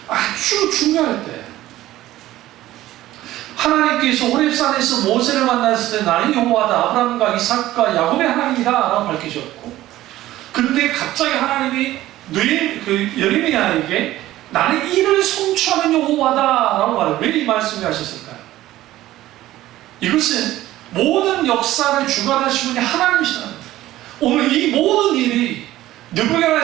아주 중요할 때. 하나님께서 호렙산에서 모세를 만났을 때 나는 여호와다, 아브라함과 이삭과 야곱의 하나님이다 라고 밝히셨고, 그런데 갑자기 하나님이 예레미야에게 나는 이를 성취하는 여호와다 라고 말해요. 왜 이 말씀을 하셨을까요? 이것은 모든 역사를 주관하시는 분이 하나님이시라는 거예요. 오늘 이 모든 일이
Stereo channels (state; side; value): quieter; left; 15.2 dB